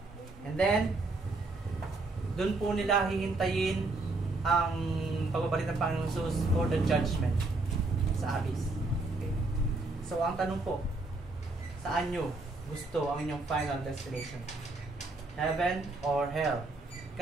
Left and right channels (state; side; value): quieter; left; 3.2 dB